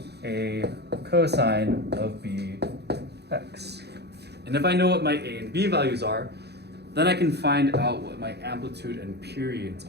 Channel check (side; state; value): left; late; 0.48 ms